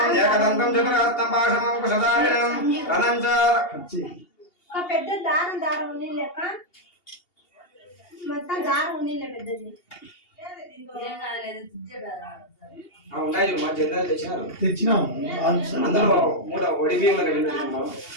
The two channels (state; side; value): late; right; 2.8 ms